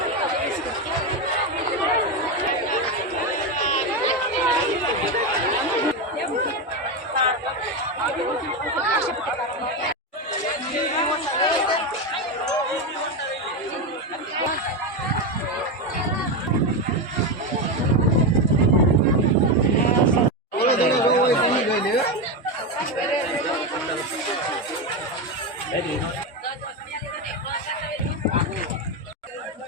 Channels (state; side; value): normal; both; correlation 0.12